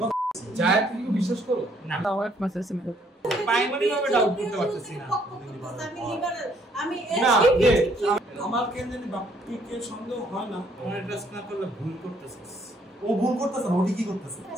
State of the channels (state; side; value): normal; both; correlation 0.66